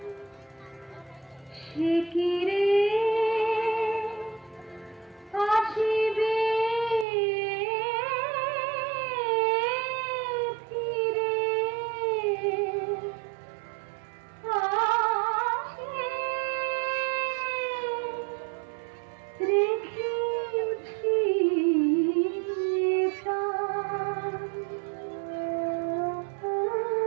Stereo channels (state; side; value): drops out; left; at 7.1 s